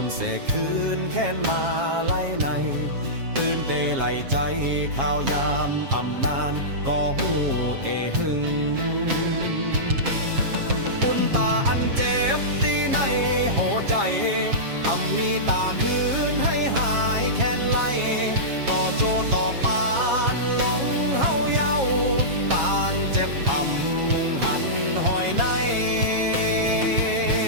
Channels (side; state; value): left; late; 7.4 ms